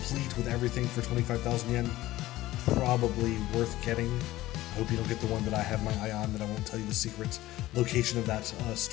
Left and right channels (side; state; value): right; quieter; 16.4 dB